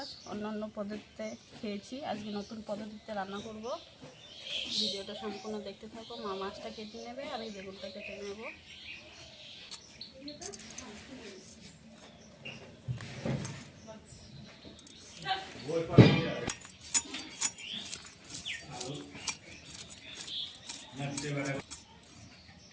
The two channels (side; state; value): both; identical; correlation 1.00